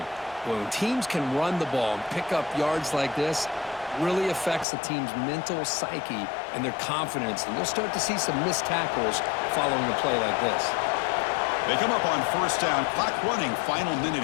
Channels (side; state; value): right; drops out; at 4.7 s